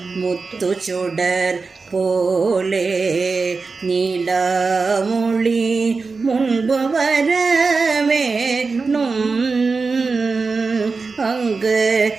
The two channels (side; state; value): left; quieter; 4.3 dB